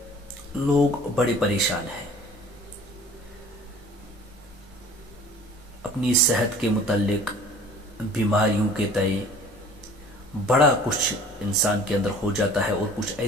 لوگ بڑے پریشان ہیں اپنی صحت کے متعلق، بیماریوں کے تئیں بڑا کچھ انسان کے اندر ہو جاتا ہے، اور کچھ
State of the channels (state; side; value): normal; both; correlation 0.48